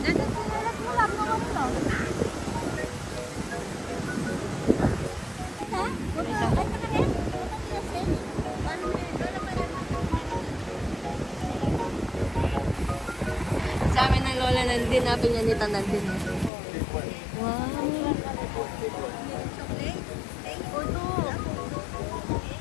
Dito, sinalat mo lang naman to. Dinapin niya ni Tanan din. Wow.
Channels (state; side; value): drops out; right; at 16.5 s